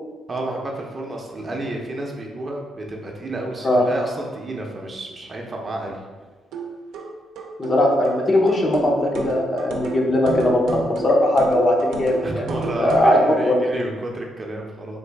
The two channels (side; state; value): both; normal; correlation 0.80